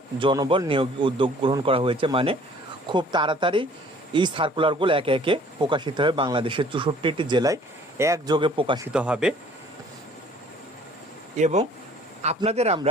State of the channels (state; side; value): normal; both; correlation 0.54